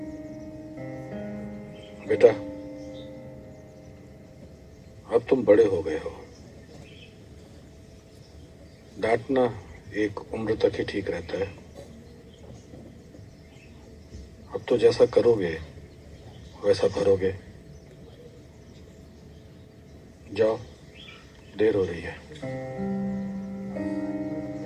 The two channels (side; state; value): both; identical; correlation 1.00